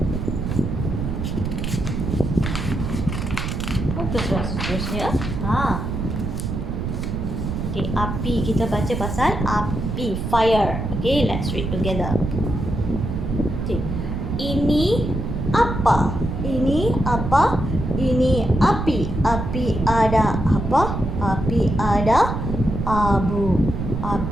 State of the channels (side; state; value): right; noise; rumble, 3 dB below the sound